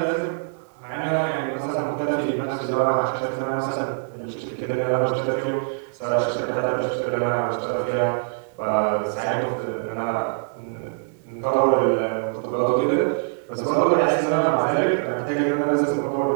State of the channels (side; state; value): left; silent; 63 dB below the other